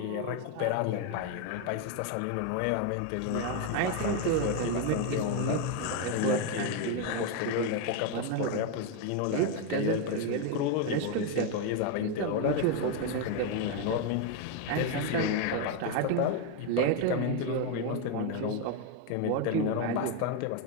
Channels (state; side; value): different; both; correlation 0.01